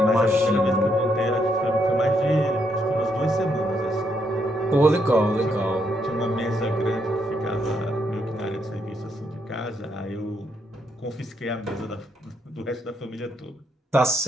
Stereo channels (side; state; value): both; normal; correlation 0.76